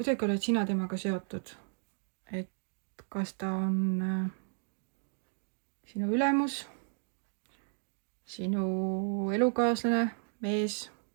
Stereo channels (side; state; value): left; silent; digital silence